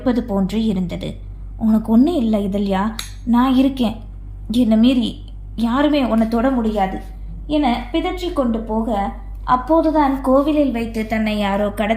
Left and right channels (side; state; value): both; identical; correlation 1.00